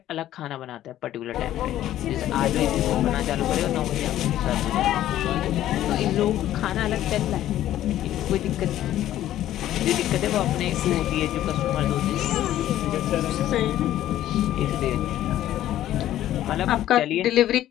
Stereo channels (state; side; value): quieter; right; 12.9 dB